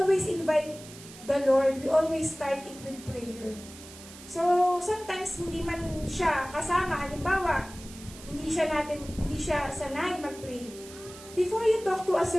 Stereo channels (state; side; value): noise; right; hiss, 17 dB below the sound